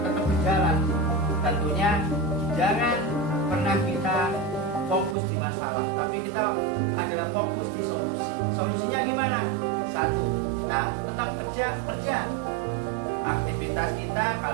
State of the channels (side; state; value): left; drops out; at 5.2 s